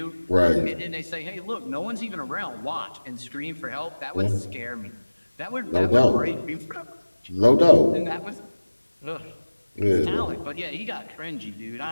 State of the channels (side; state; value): both; inverted; correlation -1.00